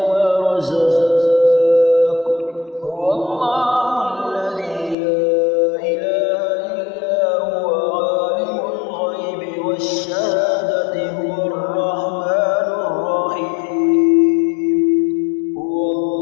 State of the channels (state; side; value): drops out; right; at 5.0 s